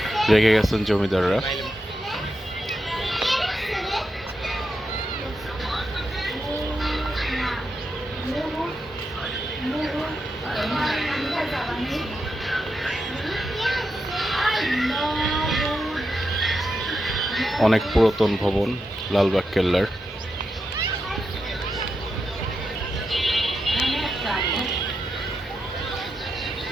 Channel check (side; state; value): both; normal; correlation 0.86